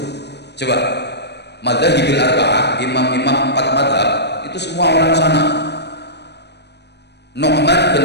Coba Madzhabil Arba'ah, imam-imam 4 mazhab itu semua orang sana. Nu'man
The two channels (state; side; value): late; right; 0.49 ms